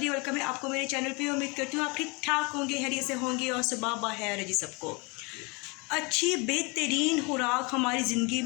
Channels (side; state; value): right; quieter; 29.0 dB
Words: welcome है आपको मेरे चैनल पे। उम्मीद करती हूँ आप ठीक ठाक होंगे, हैरियत से होंगे और सुबह बखैर है जी सबको। अच्छी बेहतरीन खुराक हमारी ज़िंदगी